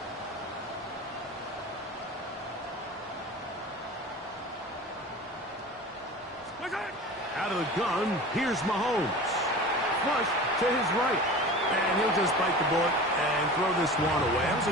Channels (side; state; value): both; normal; correlation 0.36